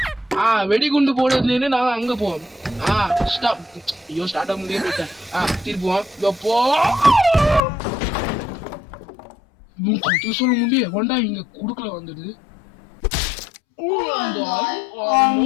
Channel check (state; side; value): drops out; right; at 7.6 s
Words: வெடிகுண்டு போடுறதுல நாங்க அங்க போவோம். ஸ்டாப். ஐயோ ஸ்டார்ட் ஆக முடியாது போயிட்டேன். திருப்புவோம். எப்போ சொல்ல முடிய வண்டா இங்க குடுக்கல வந்துடுது.